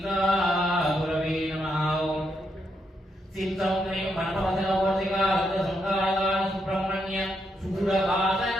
नमः सिद्धं ह्रीं वनवदनवर्तिकारुद्रसंकारकारण सुब्रह्मण्य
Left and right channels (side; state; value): both; normal; correlation 0.80